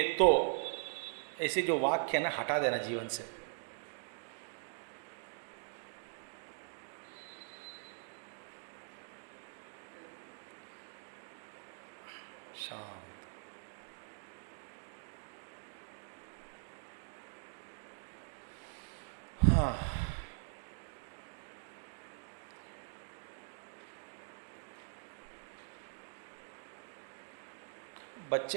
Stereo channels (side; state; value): left; silent; digital silence